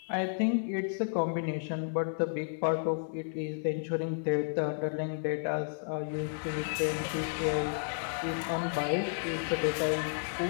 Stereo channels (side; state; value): right; silent; digital silence